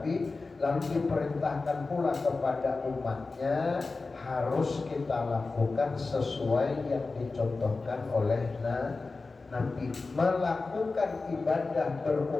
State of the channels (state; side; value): quieter; right; 3.8 dB